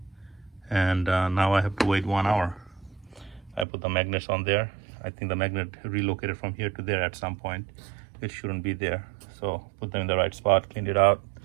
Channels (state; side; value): drops out; left; at 3.7 s